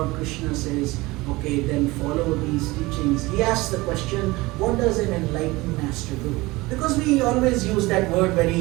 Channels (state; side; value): quieter; left; 21.5 dB